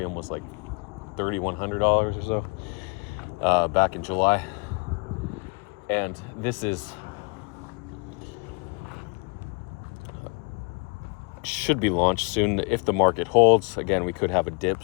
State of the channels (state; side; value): quieter; right; 33.4 dB